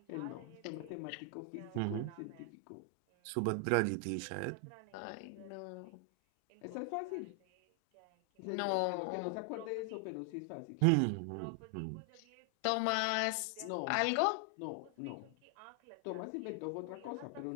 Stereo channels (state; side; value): different; both; correlation 0.00